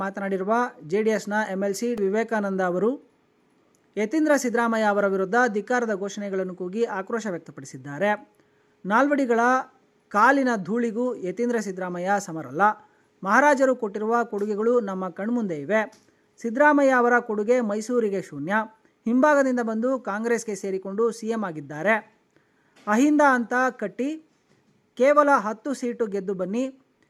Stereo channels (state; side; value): identical; both; correlation 1.00